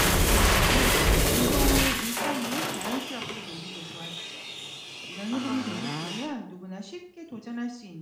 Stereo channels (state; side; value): identical; both; correlation 1.00